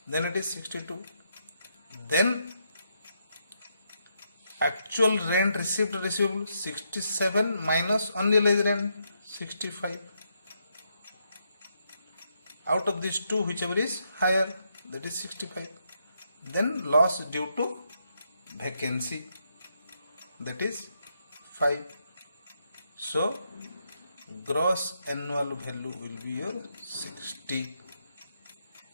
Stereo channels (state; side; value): inverted; both; correlation -0.79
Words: Then it is 62. Then actual rent received receivable 67 minus unrealized rent 65. Out of these two, whichever is higher, that is 65. Then loss due to vacancy, that is 5. So gross annual value will be your 60.